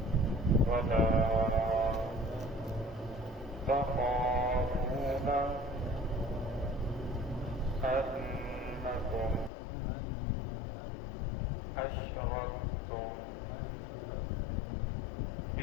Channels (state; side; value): drops out; right; at 9.5 s